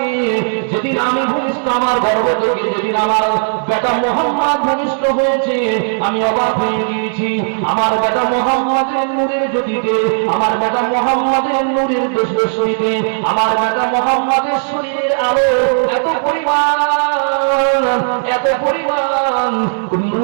যেদিন আমি ভূমিষ্ঠ, আমার গর্ভ থেকে যেদিন আমার বেটা মুহাম্মদ ভূমিষ্ঠ হয়েছে, আমি অবাক হয়ে গিয়েছি। আমার বেটা মুহাম্মদের নূরের জ্যোতিতে, আমার বেটা মুহাম্মদের নূরের দোষে, আমার বেটা মুহাম্মদের শরীরের আলো এত পরিমাণ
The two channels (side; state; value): left; silent; digital silence